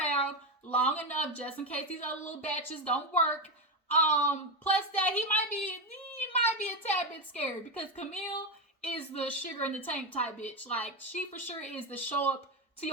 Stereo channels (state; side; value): normal; both; correlation 0.11